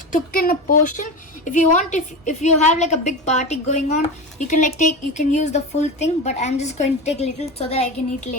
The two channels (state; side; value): normal; both; correlation 0.24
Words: took in a portion. If you want, if you have like a big party going on, you can use the full thing, but I'm just going to take little so that I can eat